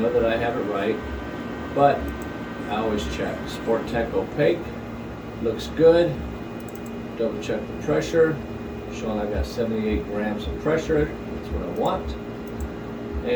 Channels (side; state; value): both; identical; correlation 1.00